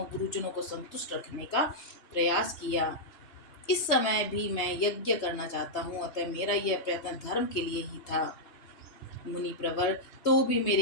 गुरुजनों को संतुष्ट रखने का प्रयास किया। इस समय भी मैं यज्ञ करना चाहता हूँ, अतः मेरा यह प्रयत्न धर्म के लिए ही था। मुनि प्रवर, तो भी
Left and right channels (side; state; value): right; late; 3.2 ms